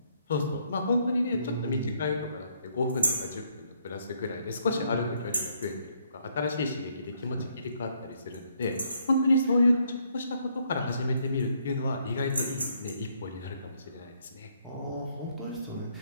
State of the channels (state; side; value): inverted; both; correlation -0.70